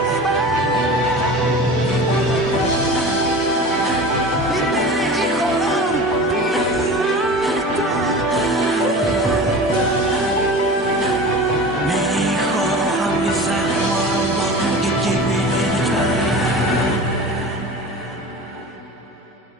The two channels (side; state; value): both; normal; correlation 0.35